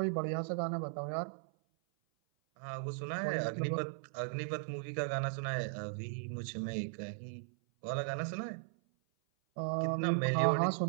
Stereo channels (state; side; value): silent; left; 53 dB below the other